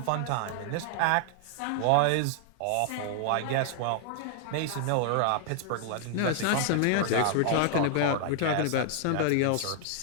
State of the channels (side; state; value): both; different; correlation -0.01